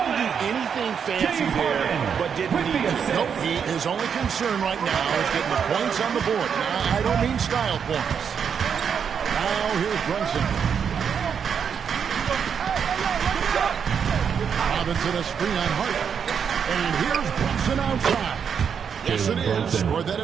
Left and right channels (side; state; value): left; quieter; 7.2 dB